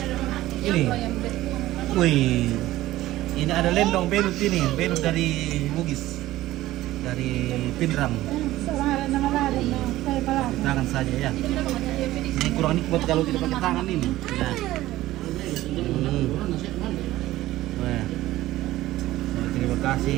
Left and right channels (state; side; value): quieter; left; 15.9 dB